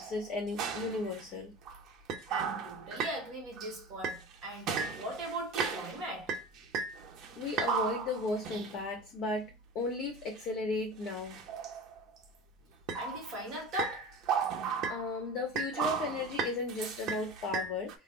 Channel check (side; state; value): both; normal; correlation 0.33